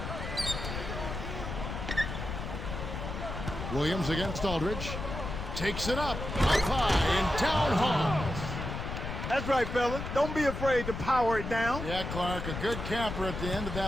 Williams against Aldridge. Takes it up high and down hard. That's right, fella. Don't be afraid to power it down. Yeah, Clark, a good camper at the end of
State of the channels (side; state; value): left; noise; rumble, 6 dB below the sound